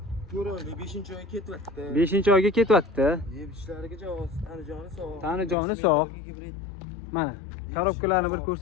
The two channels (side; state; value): right; drops out; at 5.6 s